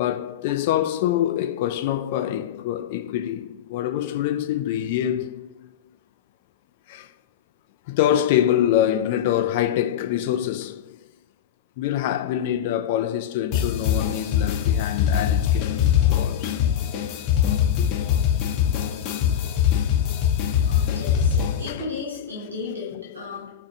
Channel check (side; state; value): right; quieter; 9.9 dB